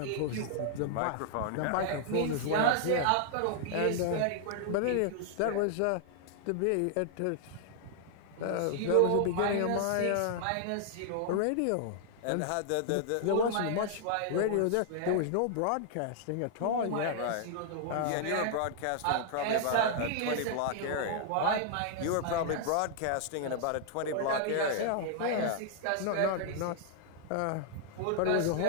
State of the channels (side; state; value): both; different; correlation -0.01